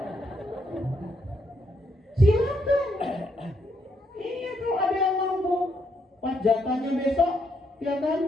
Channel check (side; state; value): both; normal; correlation 0.76